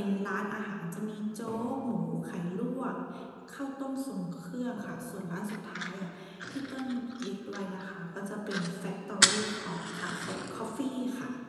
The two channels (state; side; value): identical; both; correlation 1.00